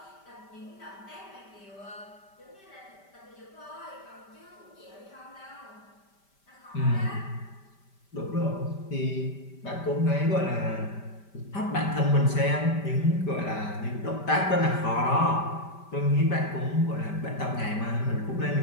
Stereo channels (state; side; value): late; right; 5.1 ms